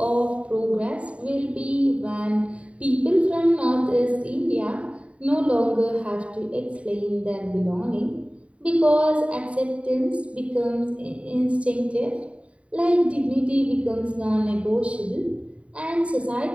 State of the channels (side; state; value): left; late; 0.063 ms